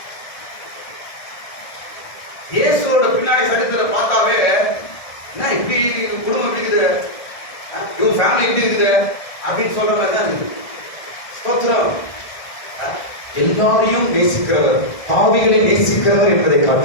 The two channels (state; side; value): late; right; 1.7 ms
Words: இயேசுவோட பின்னாடி சரித்திரத்தை பார்த்தாவே என்ன இப்படி குடும்பம் எப்படி இருக்குது, இவங்க ஃபேமிலி எப்படி இருக்குது அப்படின்னு சொல்ற மாதிரி தான் இருக்குது. ஸ்தோத்திரம். எல்லாரையும் நேசிக்கிறவர், பாவிகளை நேசிக்கிறவர் என்பதை